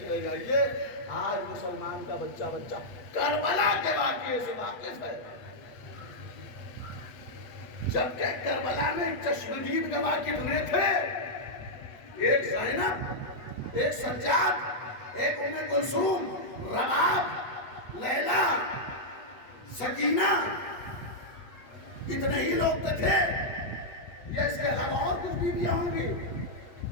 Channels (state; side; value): late; right; 8.4 ms